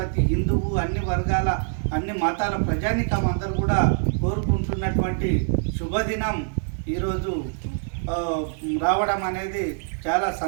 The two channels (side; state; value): left; silent; digital silence